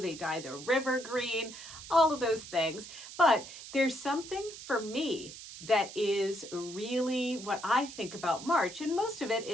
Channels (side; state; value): right; noise; hiss, 13 dB below the sound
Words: dye the river green, all of those things. But there's something for me that is really what I think about March, and most of it